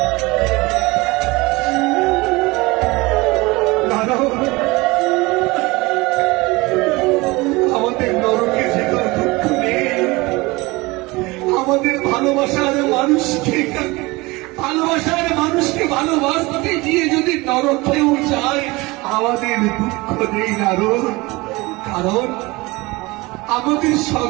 আমাদের নরকে যেতে দুঃখ নেই, আমাদের ভালোবাসার মানুষকে ভালোবাসতে গিয়ে যদি নরকেও যায়, আমাদের দুঃখ নেই নারদ। কারণ আমাদের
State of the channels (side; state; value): left; quieter; 22.9 dB